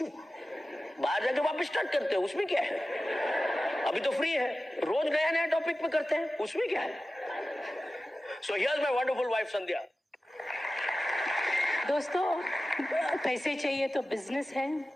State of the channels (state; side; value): normal; both; correlation 0.95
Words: बाहर जाके वापस स्टार्ट करते हैं, उसमें क्या है, अभी तो फ्री है, रोज नया नया टॉपिक पे करते हैं, उसमें क्या है। So here's my wonderful wife Sandhya. दोस्तों, पैसे चाहिए तो बिजनेस है,